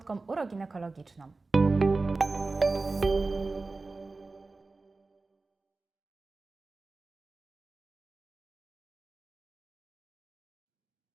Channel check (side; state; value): left; quieter; 3.6 dB